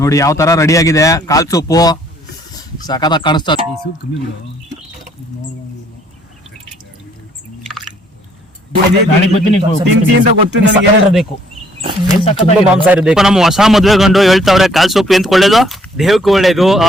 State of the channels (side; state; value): both; normal; correlation 0.64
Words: ನೋಡಿ ಯಾವ ತರ ರೆಡಿ ಆಗಿದೆ ಕಾಲ್ ಸೂಪು. ಸಖತ್ತಾಗಿ ಕಾಣಿಸ್ತಾ. ನಮ್ಮ ಹೊಸ ಮದ್ವೆ ಗಂಡು ಹೇಳ್ತಾವ್ರೆ ಕಾಲ್ ಸೂಪ್ ಎಂತ ಒಳ್ಳೇದು, ದೇಹಕ್ಕೆ ಒಳ್ಳೇದು,